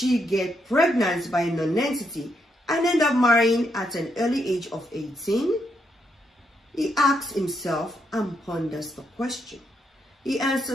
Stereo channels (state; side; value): normal; both; correlation 0.79